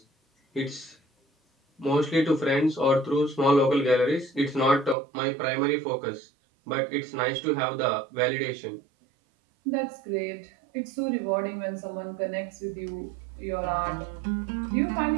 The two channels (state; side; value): drops out; left; at 5.0 s